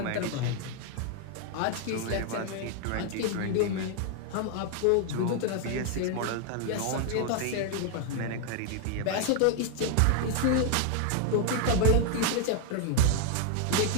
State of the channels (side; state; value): both; different; correlation 0.00